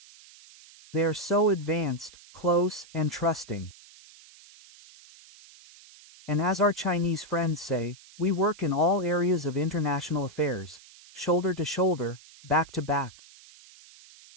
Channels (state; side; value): noise; right; hiss, 22 dB below the sound